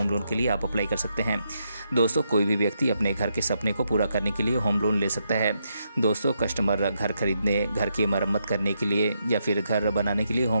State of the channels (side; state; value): both; inverted; correlation -0.80